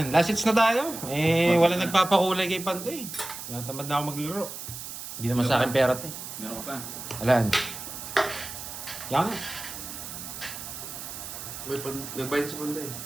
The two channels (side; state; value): right; noise; hiss, 9 dB below the sound